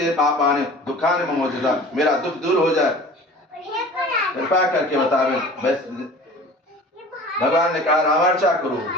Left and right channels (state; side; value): normal; both; correlation 0.42